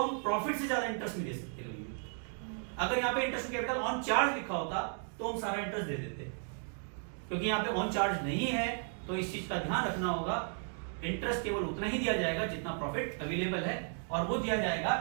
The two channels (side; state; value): left; silent; 55 dB below the other